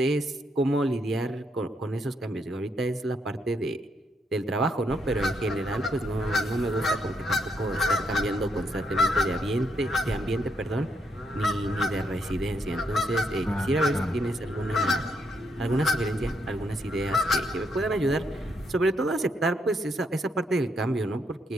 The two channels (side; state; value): both; normal; correlation 0.76